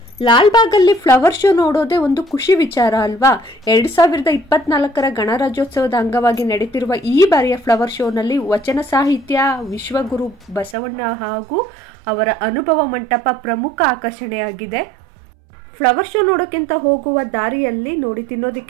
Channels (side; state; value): left; drops out; at 10.8 s